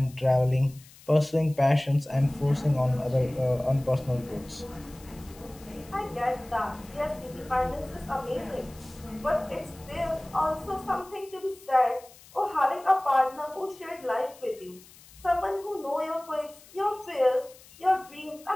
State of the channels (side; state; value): left; noise; hiss, 23 dB below the sound